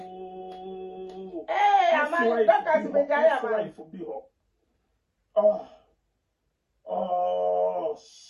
Hey, amani Dorcas be jaya ex-wife be her. Oh,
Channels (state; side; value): identical; both; correlation 1.00